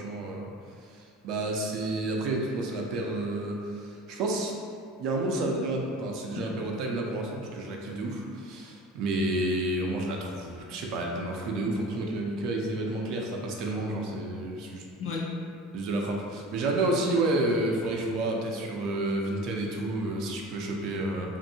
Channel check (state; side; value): normal; both; correlation 0.38